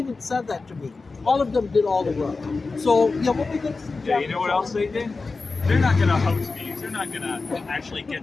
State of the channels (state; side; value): quieter; right; 4.0 dB